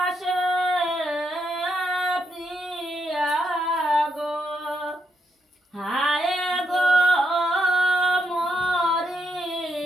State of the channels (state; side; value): normal; both; correlation 0.80